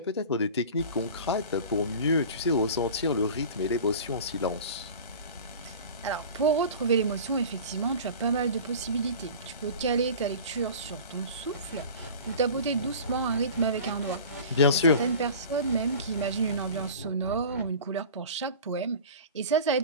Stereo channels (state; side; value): inverted; both; correlation -0.37